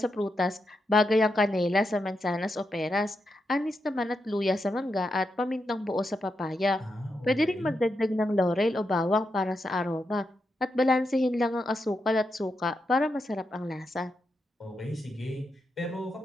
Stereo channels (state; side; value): normal; both; correlation 0.85